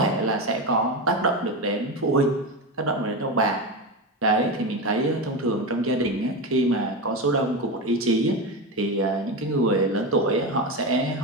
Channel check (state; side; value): normal; both; correlation 0.17